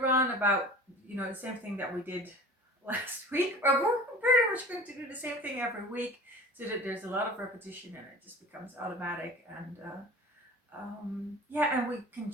about the same thing that we did last week. We're pretty much going to do the same thing every week, so that there's a lot of repetition and it just becomes automatic. And and we can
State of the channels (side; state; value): both; normal; correlation 0.40